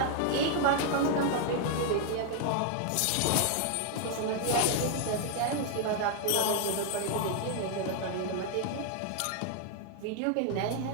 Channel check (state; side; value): different; both; correlation 0.00